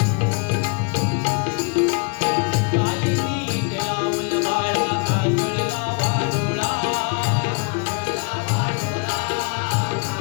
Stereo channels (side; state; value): right; quieter; 34.8 dB